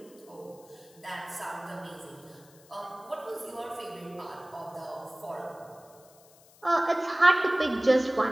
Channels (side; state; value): left; noise; hiss, 26 dB below the sound